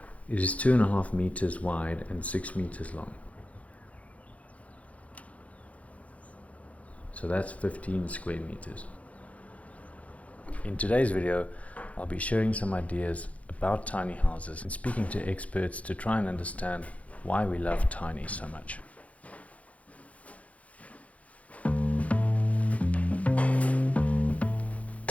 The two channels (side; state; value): right; late; 0.066 ms